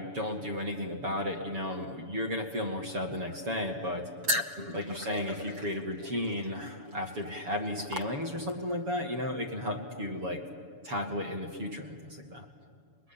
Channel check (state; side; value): late; left; 7.1 ms